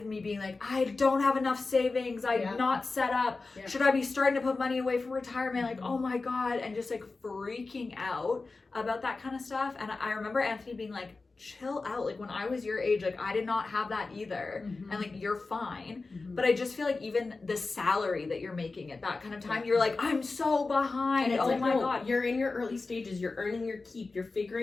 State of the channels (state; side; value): quieter; right; 3.8 dB